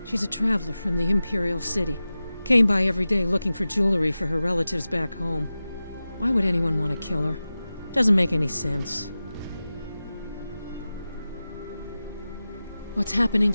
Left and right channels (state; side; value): inverted; both; correlation -0.95